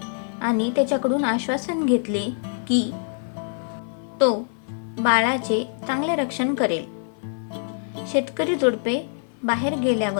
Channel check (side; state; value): right; silent; 56 dB below the other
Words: आणि त्याच्याकडून आश्वासन घेतले की तो बाळाचे चांगले रक्षण करेल. शेतकरी जोडपे बाहेर